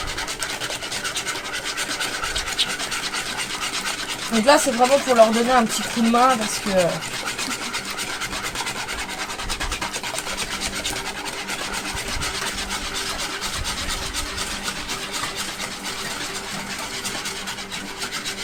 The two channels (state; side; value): identical; both; correlation 1.00